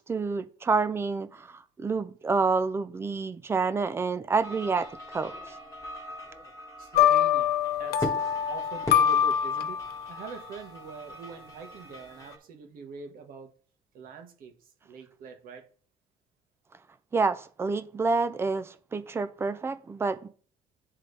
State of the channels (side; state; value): both; normal; correlation 0.48